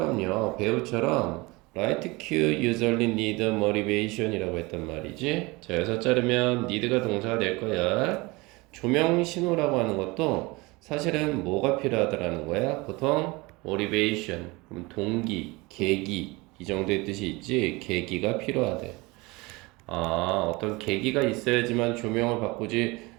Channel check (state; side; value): quieter; left; 24.0 dB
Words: right cue usually need motivation 이라고 했단 말이지. 자, 여기서 자르면 need가 동사가 될 거야. 조명 신호라고 하는 것도 사실은 뭐가 필요하다라는 거야? 보통 motivation, 그럼 동기, 계기 이 정도의 뜻이 있지. 계기가 필요하대. 어떤 계기가 있어야지만 조명을 바꾸지